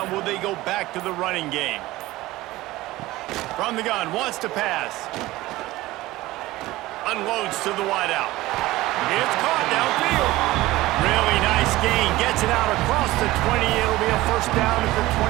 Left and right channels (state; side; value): quieter; left; 18.0 dB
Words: will they go back to the running game? From the gun, wants to pass. Unloads to the wideout. It's caught downfield. Really nice gain. Gets it out across the 20. It'll be a first down at the